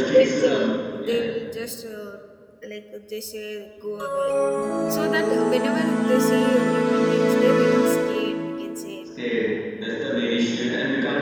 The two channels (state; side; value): identical; both; correlation 1.00